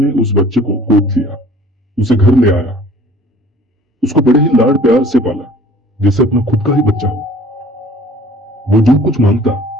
उस बच्चे को गोद लिया, उसे घर ले आया, उसको बड़े ही लाड प्यार से पाला जैसे अपना खुद का ही बच्चा हो। वो जो कुछ मांगता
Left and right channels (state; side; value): normal; both; correlation 0.50